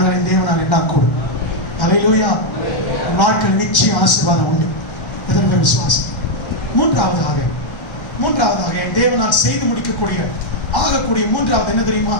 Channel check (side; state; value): right; late; 1.3 ms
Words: தேவனால் எல்லாம் கூடும். அல்லேலூயா. வாழ்க்கை நிச்சயம் ஆசீர்வாதம் உண்டு. எதற்கு விசுவாசம். மூன்றாவதாக தேவனால் செய்து முடிக்கக்கூடிய ஆகக்கூடிய மூன்றாவது என்ன தெரியுமா?